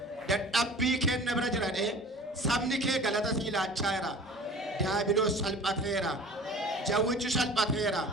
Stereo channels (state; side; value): normal; both; correlation 0.42